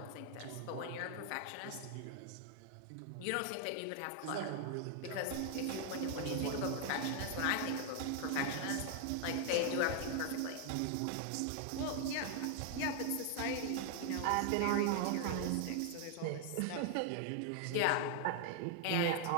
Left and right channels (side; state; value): both; different; correlation 0.00